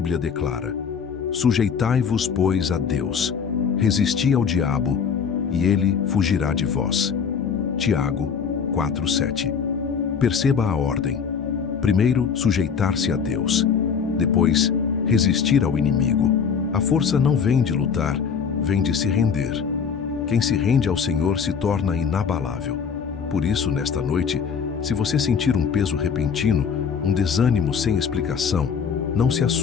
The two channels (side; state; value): right; quieter; 6.5 dB